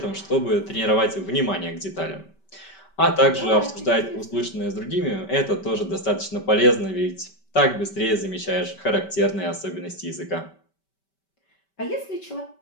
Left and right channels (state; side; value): late; right; 5.2 ms